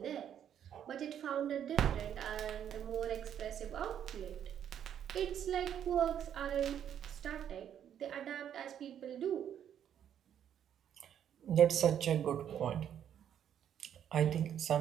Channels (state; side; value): quieter; left; 9.5 dB